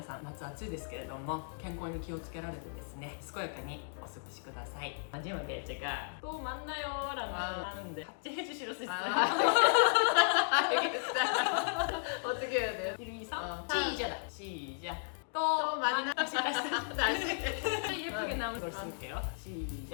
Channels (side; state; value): right; silent; digital silence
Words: さん、夏暑いですけれども健康に気をつけられてですね、健やかにお過ごしください。마지막에 제가 또 만나요라고 하는데 같이 해주실 수 있어요? 알겠다. 어떻게 해야 돼요? 1, 2, 3 시작. 시작! 시작! 또 만나 예쁘게 나온 걸 쓸게요.